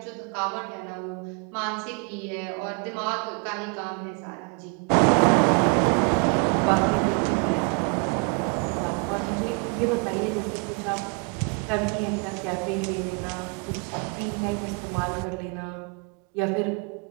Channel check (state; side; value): quieter; left; 34.3 dB